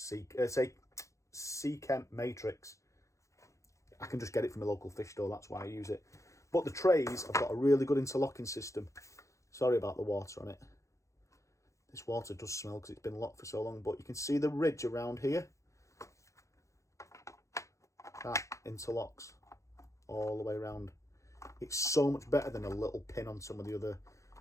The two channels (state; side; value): late; right; 0.15 ms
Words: Seachem Matrix. I can just get it from a local fish store, that's why I use it. But the trays have got a really good interlocking system. Sorry about the water on it. This water does smell because it's been locked for so long, but you can see the ridge around here. That interlocks all the way around. It's so much better than a little pin on some of the other